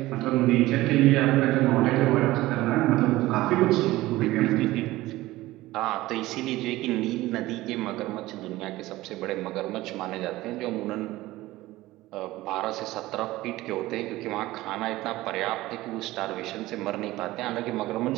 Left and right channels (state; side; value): quieter; left; 17.7 dB